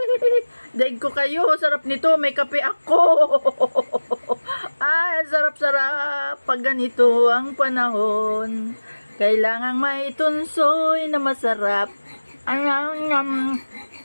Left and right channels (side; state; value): both; inverted; correlation -1.00